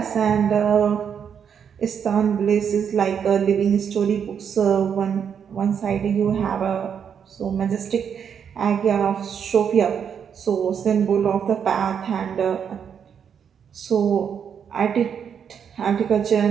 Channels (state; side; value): quieter; left; 7.6 dB